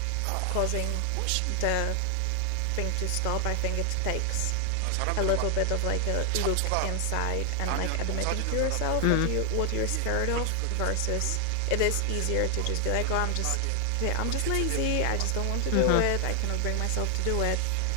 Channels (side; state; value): both; different; correlation 0.00